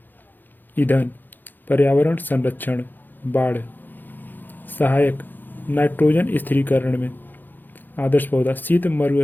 ईंधन पर्यावरण संरक्षण बाढ़। सहायक नाइट्रोजन स्थिरीकरण में। आदर्श पौधा शीत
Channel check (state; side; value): late; right; 0.089 ms